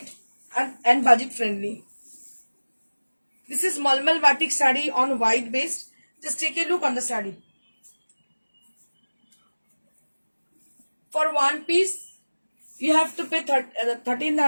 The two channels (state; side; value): inverted; both; correlation -1.00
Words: and budget friendly. This is Malmal batik saree on white base. Just take a look on the saree. For one piece, you have to pay